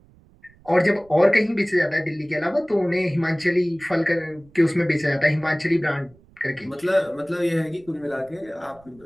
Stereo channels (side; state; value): right; noise; rumble, 28 dB below the sound